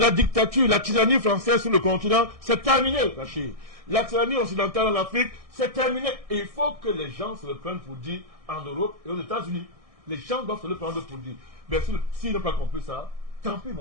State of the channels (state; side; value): late; left; 1.6 ms